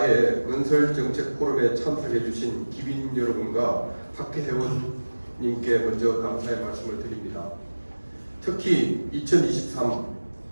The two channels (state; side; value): inverted; both; correlation -1.00